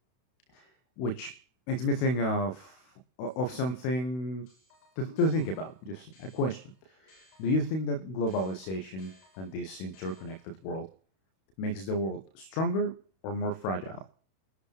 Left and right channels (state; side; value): late; right; 32 ms